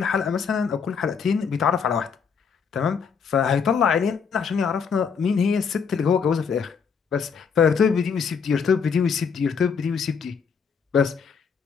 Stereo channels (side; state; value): right; quieter; 6.2 dB